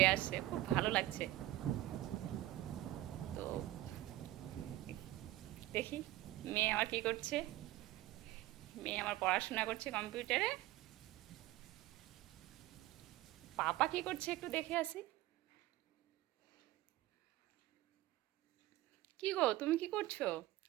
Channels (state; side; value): quieter; left; 16.0 dB